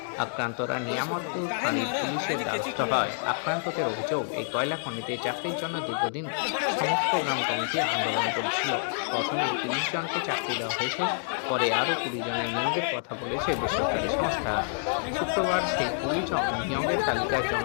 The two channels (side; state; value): right; silent; digital silence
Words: আক্রান্তরা নিয়ামতপুর থানার পুলিশের দ্বারস্থ হয়। আক্রান্তদের অভিযোগ, এই কয়লা খনিতে চাকরির জন্য দীর্ঘদিন সমস্ত গ্রাম কমিটি আন্দোলন করেছিল। প্রথমে ৩০ জনকে চাকরি দেওয়া হয়েছে, পরে আরও ২০ জনের নিয়োগের কথা বলেছে বেসরকারি সংস্থা। শুক্রবার সেই ২০ জন নিয়োগের তালিকায়